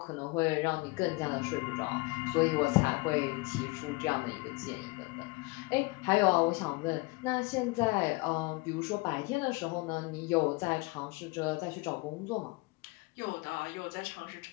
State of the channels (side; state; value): right; quieter; 24.7 dB